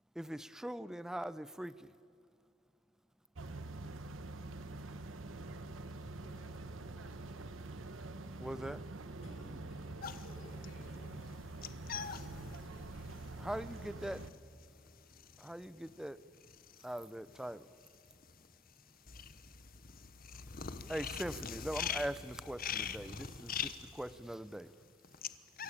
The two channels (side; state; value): both; normal; correlation 0.61